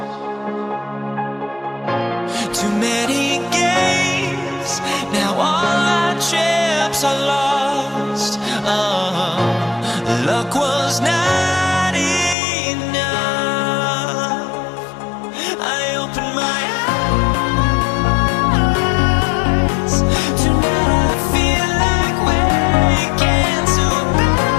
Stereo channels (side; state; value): right; drops out; at 12.4 s